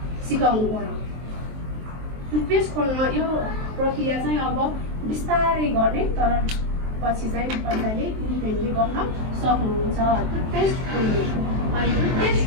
सिकाउनु पर्यो। टुथपेस्ट खोल्न यो प्रक्रिया चाहिँ अब बिस्तारै गर्ने, तर पछि चाहिँ बच्चाले इन्डिपेन्डेन्टली गर्न सक्नुहुन्छ। टुथपेस्ट खोल्ने। अनि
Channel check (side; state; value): left; late; 23 ms